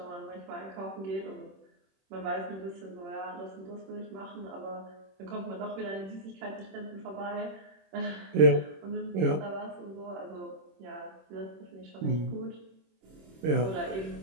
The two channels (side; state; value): left; late; 26 ms